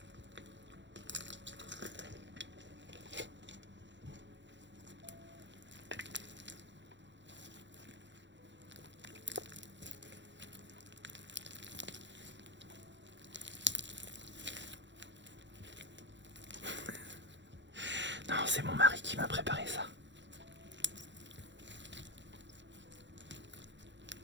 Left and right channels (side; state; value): left; late; 0.53 ms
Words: Non, c'est mon mari qui m'a préparé ça.